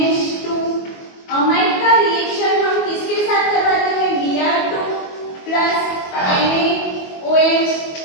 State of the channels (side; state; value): right; late; 22 ms